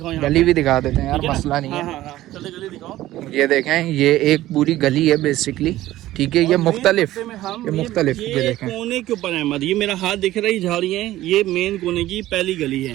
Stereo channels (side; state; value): left; quieter; 15.2 dB